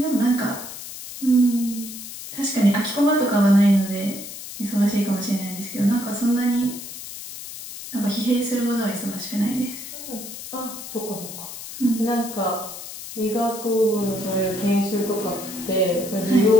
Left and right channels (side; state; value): left; noise; hiss, 11 dB below the sound